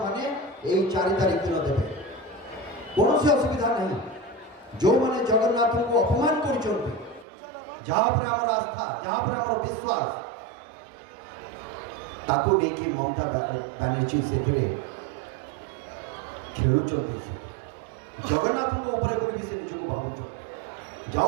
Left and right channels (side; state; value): left; drops out; at 7.2 s